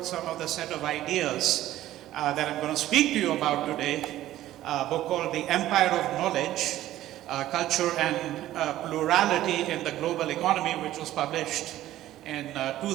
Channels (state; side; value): quieter; left; 14.1 dB